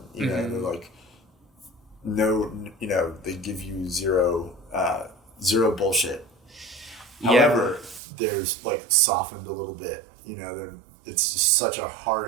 they're like, no, they give you zero bullshit. However, there's like softened a little bit, it's just such a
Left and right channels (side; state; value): left; drops out; at 8.0 s